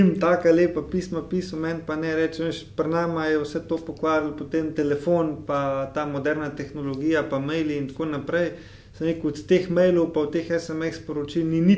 taka lepa pisma pisal, meni pa ne reče, pri nama je vse to pokvarilo, potem telefon, pa ta moderna tehnologija, pa maili in tako naprej. Sem rekel, od teh mailov pa od teh SMS sporočil ni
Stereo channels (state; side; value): identical; both; correlation 1.00